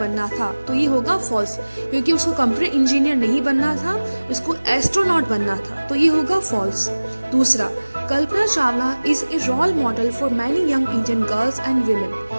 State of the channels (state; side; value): inverted; both; correlation -1.00